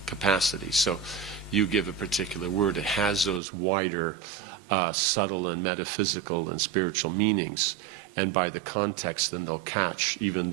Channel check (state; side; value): drops out; left; at 3.4 s